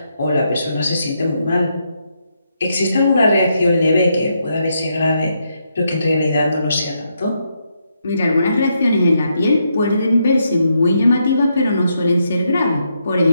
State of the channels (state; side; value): inverted; both; correlation -0.79